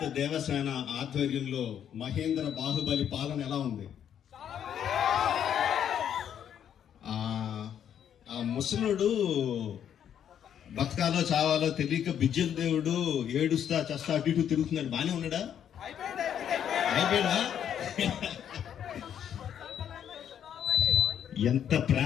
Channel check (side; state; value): right; quieter; 9.3 dB